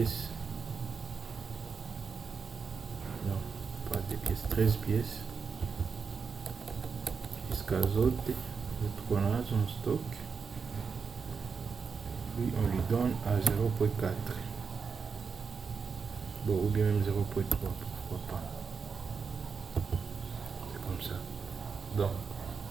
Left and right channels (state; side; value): quieter; left; 5.6 dB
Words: Non, pas des pièces, 13 pièces. Jusqu'à autres qu'on a en stock. Puis on lui donne à 0.4. Bon, ou bien même 0.3, pourquoi pas. C'est comme ça. Donc,